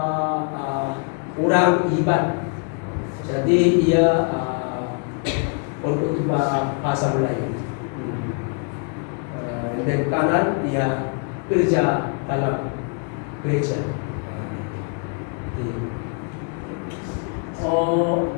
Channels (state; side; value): quieter; right; 38.9 dB